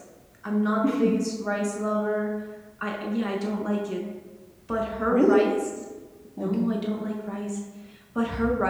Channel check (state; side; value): identical; both; correlation 1.00